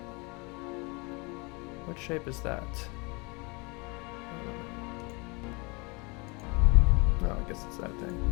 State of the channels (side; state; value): right; quieter; 29.0 dB